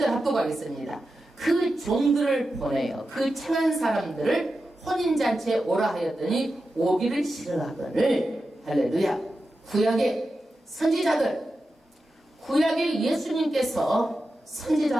합독하겠습니다. 그 종들을 보내요. 그 청한 사람들을 혼인잔치에 오라 하였더니 오기를 싫어하거늘. 할렐루야. 구약의 선지자들, 구약의 예수님께서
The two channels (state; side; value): normal; both; correlation 0.91